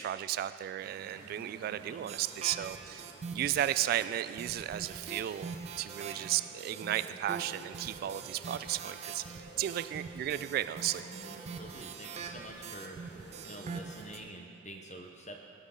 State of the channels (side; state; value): left; quieter; 10.1 dB